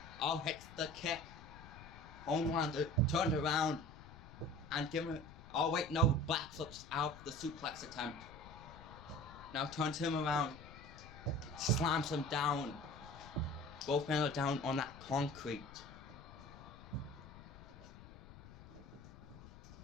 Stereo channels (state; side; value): noise; left; rumble, 17 dB below the sound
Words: all hits the kick. Homelander turned around and given it. Oh wait, no, backflips out the suplex attempt. Now turns him around, slams him down. Both men are down on that concrete.